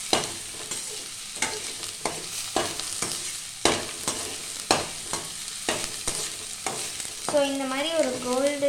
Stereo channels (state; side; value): identical; both; correlation 1.00